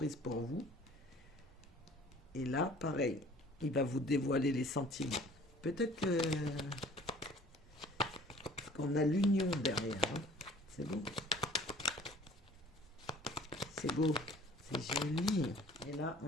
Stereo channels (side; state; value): both; normal; correlation 0.51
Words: pour vous. Et là, pareil, il va vous dévoiler les sentiments. Peut-être que... Parce qu'on a l'union derrière. Hein. C'est beau. C'est beau. C'est joli. Et là,